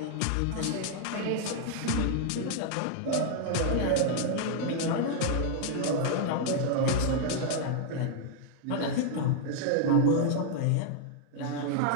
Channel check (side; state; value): both; different; correlation 0.00